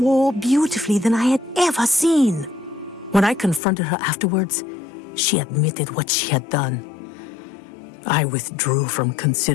beautifully than I had ever seen. When I confronted her afterwards, she admitted what she had done. I withdrew from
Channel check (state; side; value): drops out; right; at 3.6 s